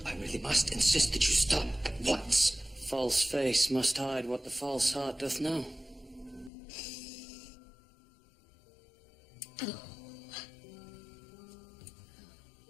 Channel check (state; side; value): drops out; right; at 6.5 s